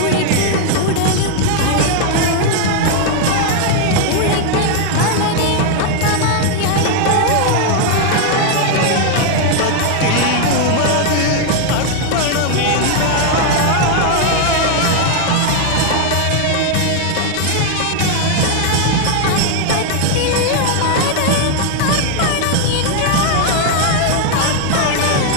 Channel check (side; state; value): both; different; correlation 0.00